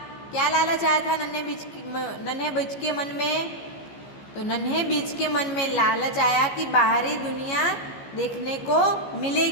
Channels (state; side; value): late; right; 15 ms